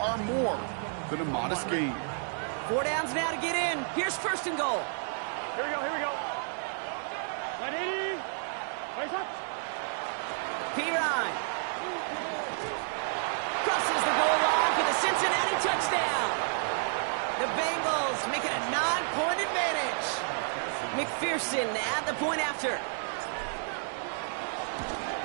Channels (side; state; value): left; silent; digital silence